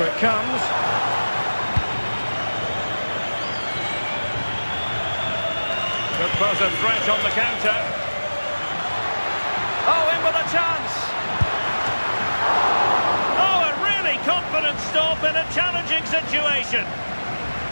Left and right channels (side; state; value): both; inverted; correlation -1.00